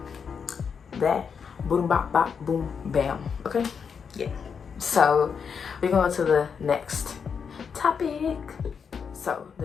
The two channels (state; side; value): quieter; right; 6.4 dB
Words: That. Boom, bop, bop, boom, bam. Okay? Yeah. So, we're going to the next topic. So,